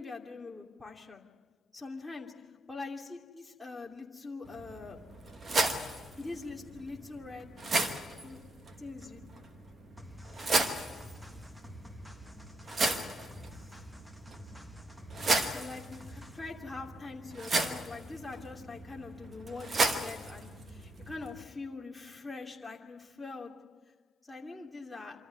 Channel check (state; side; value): normal; both; correlation 0.79